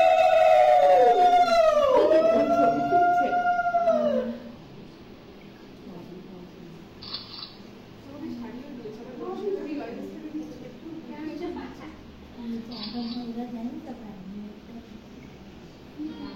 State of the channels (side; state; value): both; identical; correlation 1.00